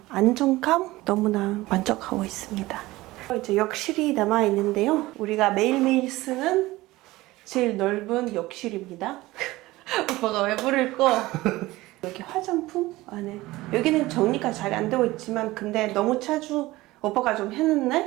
안정감 너무나 만족하고 있습니다. 이제 욕실이 남아 있는데요. 우리가 매일매일 쓰는 제일 넓은 욕실입니다. 오빠가 왜 부를 거? 여기 화장품 안에 여기는 정리가 잘 안 되고 있지만 근데 너무 자주 오빠가 좀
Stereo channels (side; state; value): left; quieter; 18.8 dB